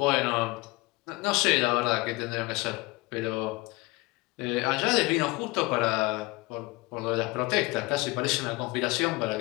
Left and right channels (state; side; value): quieter; right; 23.2 dB